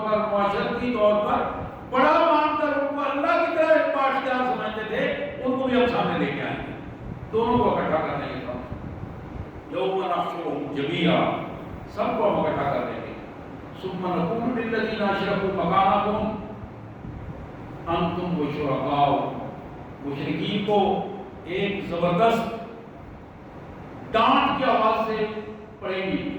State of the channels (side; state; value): both; identical; correlation 1.00